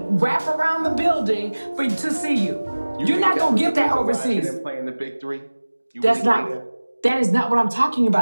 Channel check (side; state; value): both; inverted; correlation -1.00